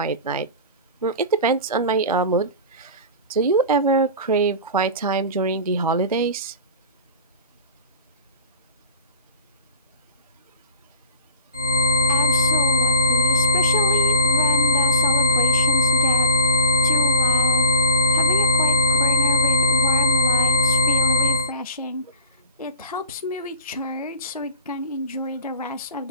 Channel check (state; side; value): inverted; both; correlation -0.39